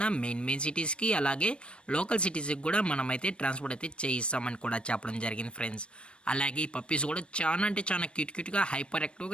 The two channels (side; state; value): right; late; 0.057 ms